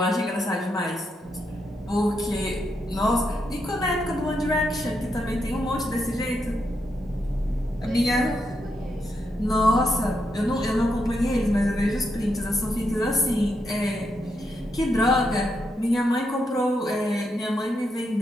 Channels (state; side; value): normal; both; correlation 0.82